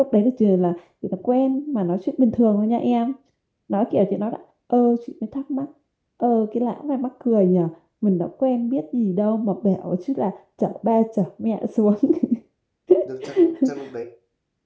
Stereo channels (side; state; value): both; identical; correlation 1.00